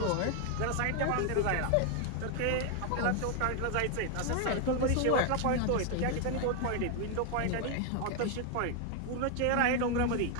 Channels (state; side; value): different; both; correlation 0.01